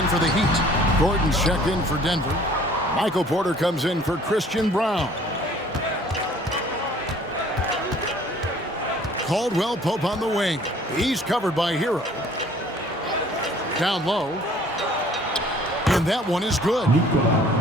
for the Heat. Gordon's checked in for Denver. Michael Porter comes in for Christian Brown. Caldwell Pope on the wing. He's covered by Hero. Down low. And that one is good.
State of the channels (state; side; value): normal; both; correlation 0.54